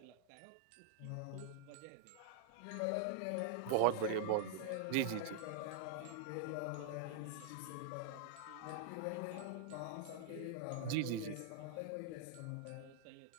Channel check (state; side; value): different; both; correlation -0.01